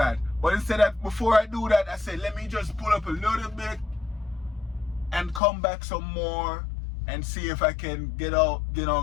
But instead of, before I do that, I said, let me just pull up a little bit and come back some more and see if I can get out,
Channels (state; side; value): drops out; right; at 5.4 s